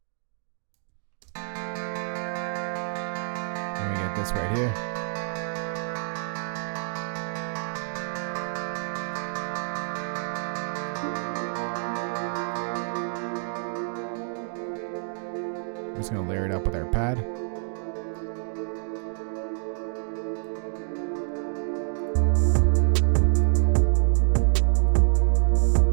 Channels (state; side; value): silent; left; 60 dB below the other